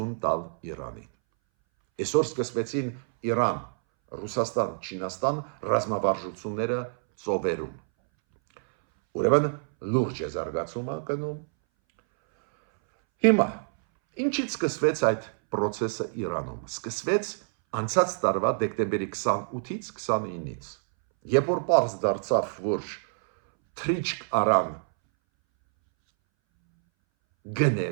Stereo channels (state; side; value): silent; left; 60 dB below the other